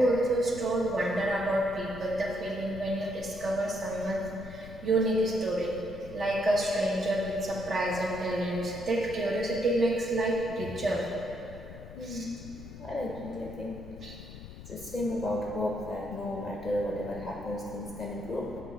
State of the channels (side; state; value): left; noise; rumble, 14 dB below the sound